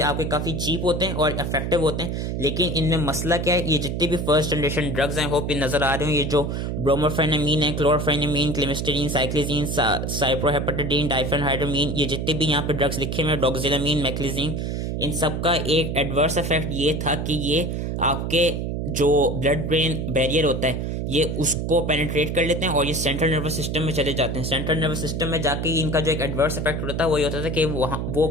आपके काफी चीप होते हैं और इफेक्टिव होते हैं। लेकिन इनमें मसला क्या है, ये जितने भी फर्स्ट जनरेशन ड्रग्स हैं, होप ये नजर आ रहे हो, ये जो ब्रोमोफेनामीन है, क्लोरफेनामीन, क्लिमिस्टरीन, साइक्लिजीन, साइप्रोहेपेटाडीन, डाइफेनहाइड्रामीन, ये जितने भी यहाँ पे ड्रग्स लिखे हुए, डॉक्सिलामीन, मैक्लिजीन, इन सब का एक एडवर्स इफेक्ट ये था कि ये आपके जो ब्लड ब्रेन बैरियर होता है ये उसको पेनिट्रेट कर लेते हैं और ये सेंट्रल नर्वस सिस्टम में चले जाते हैं। सेंट्रल नर्वस सिस्टम में जाके इनका जो एक एडवर्स इफेक्ट होता है वो ये होता था कि वो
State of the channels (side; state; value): right; noise; hum, 2 dB below the sound